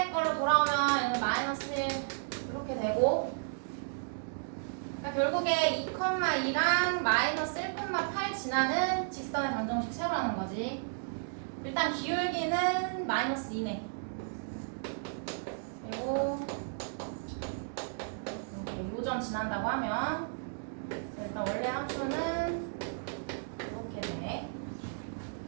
걸로 돌아오면 얘는 마이너스 1 이렇게 되고, 그러니까 결국에 2,2랑 마이너스 1,8 지나는 직선의 방정식 세우라는 거지. 일단 기울기는 마이너스 2네. 그리고 이렇게 요점 지난다고 하면 일단 원래 함수는 이렇게 되네.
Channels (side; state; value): left; silent; digital silence